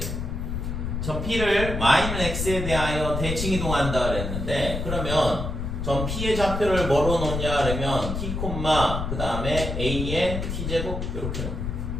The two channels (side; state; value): left; noise; rumble, 3 dB below the sound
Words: 점 p를 y는 x에 대하여 대칭 이동한다 그랬는데, 그러면 점 p의 좌표를 뭐로 놓냐 그러면 t, 그 다음에 a의 t제곱 이렇게 놓고,